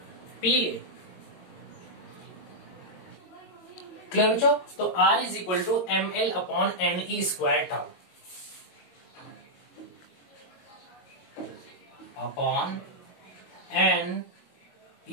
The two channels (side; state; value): right; late; 22 ms